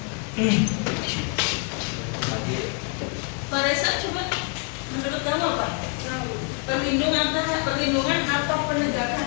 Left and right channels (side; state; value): right; quieter; 39.5 dB